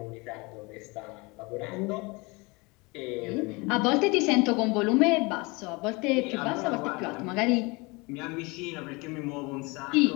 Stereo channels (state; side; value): quieter; right; 26.3 dB